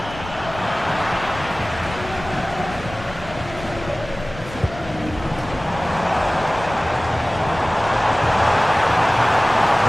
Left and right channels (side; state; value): left; noise; rumble, 14 dB below the sound